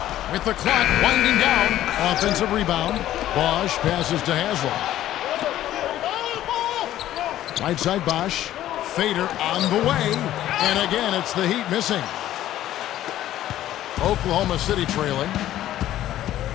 With the clock winding down. Offensive rebound. Bosch passes to Haslam. Right side Bosch. Fader on the way. And again, it's the Heat missing. Oklahoma City trailing.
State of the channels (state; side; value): quieter; right; 13.2 dB